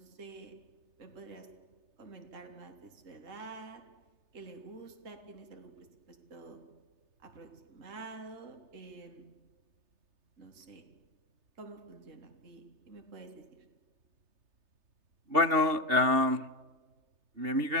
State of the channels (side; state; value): left; late; 3.3 ms